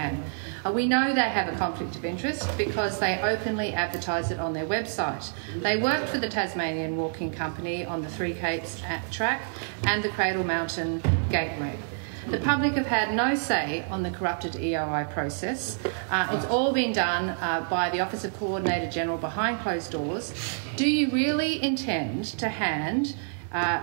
We know they have a conflict of interest because they openly advertise it on their website. They work for the Tasmanian Walking Company on the Three Capes track and the Cradle Mountain Gateway. The public have had no say on the corrupted EOI process. It's all been done by the Office of Coordinator General behind closed doors. Do you really intend to hand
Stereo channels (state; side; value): silent; left; digital silence